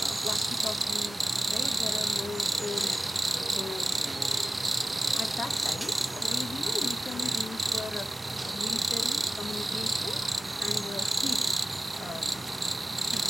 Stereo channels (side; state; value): both; normal; correlation 0.95